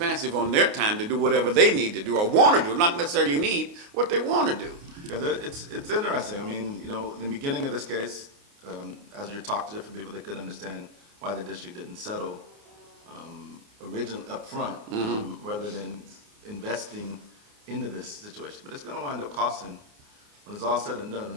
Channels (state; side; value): late; left; 29 ms